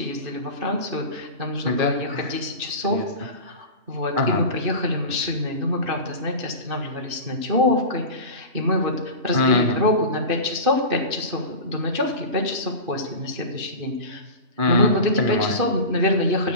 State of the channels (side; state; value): left; late; 2.6 ms